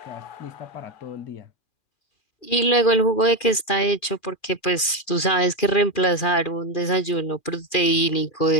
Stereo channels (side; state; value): right; late; 2.4 ms